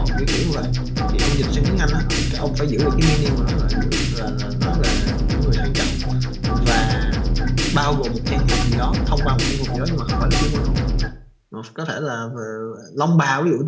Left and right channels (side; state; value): both; identical; correlation 1.00